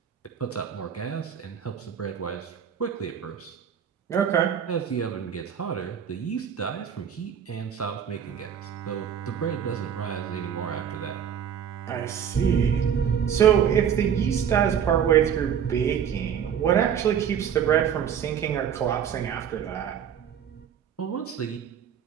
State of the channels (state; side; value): quieter; left; 8.5 dB